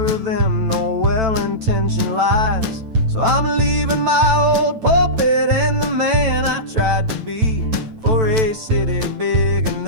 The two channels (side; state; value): left; late; 9.1 ms